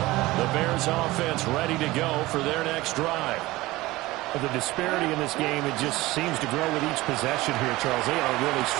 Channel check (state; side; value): quieter; left; 19.1 dB